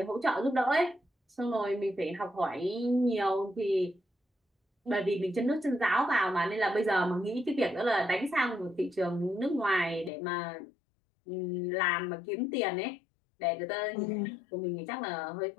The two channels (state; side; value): drops out; right; at 10.1 s